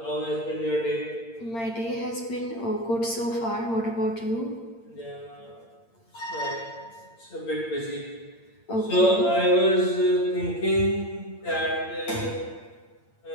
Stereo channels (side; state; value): right; late; 8.8 ms